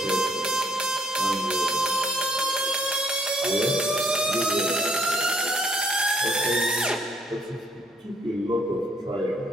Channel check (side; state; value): both; normal; correlation 0.67